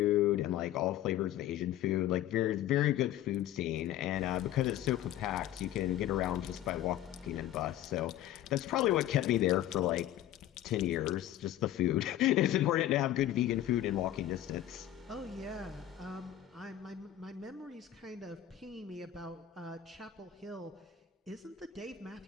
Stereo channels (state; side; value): quieter; right; 12.6 dB